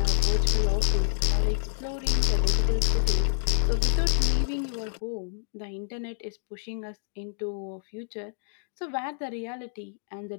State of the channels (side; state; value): right; silent; digital silence